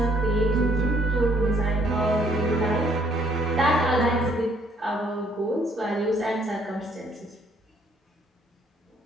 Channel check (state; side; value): normal; both; correlation 0.66